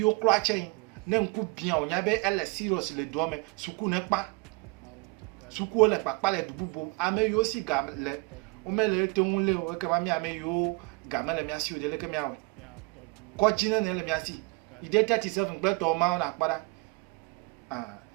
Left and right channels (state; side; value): quieter; left; 27.7 dB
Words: klachen. Ne nku bien o nyabe elle serious le doame. Suku ne pa. Suku le pa le dububo. Ame yo si gam le. O me le te un le o ke ma mi ame yo gam le mi asi o de le ke mi awe. Ko jina ne le mi asi. Ide 37 gbe to ma na pada.